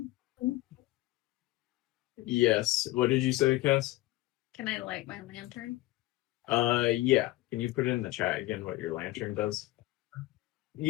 Yes. What did you say, Cass? Can I light my lantern? Yeah. Can you put it in the chat again what your lantern does?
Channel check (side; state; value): right; quieter; 18.1 dB